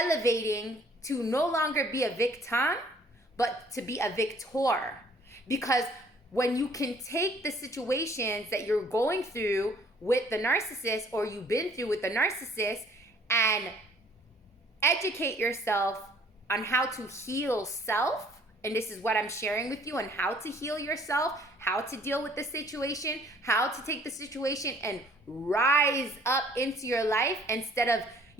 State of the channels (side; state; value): both; normal; correlation 0.58